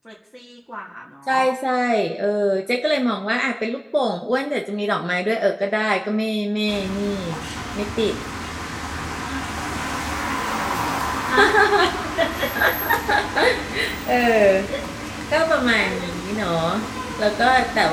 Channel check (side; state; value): both; identical; correlation 1.00